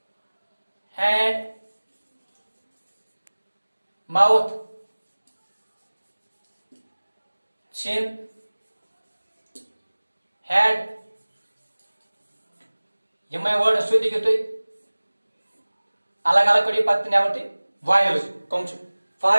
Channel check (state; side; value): inverted; both; correlation -1.00